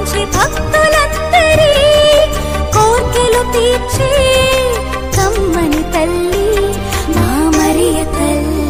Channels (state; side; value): identical; both; correlation 1.00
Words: భక్తులందరి కోర్కెలు తీర్చి కమ్మని తల్లి మా మరియ తల్లి